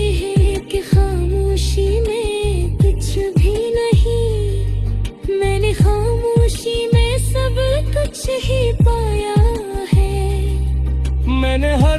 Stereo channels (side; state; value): both; identical; correlation 1.00